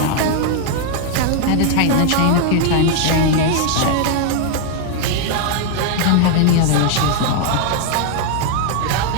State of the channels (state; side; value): different; both; correlation 0.00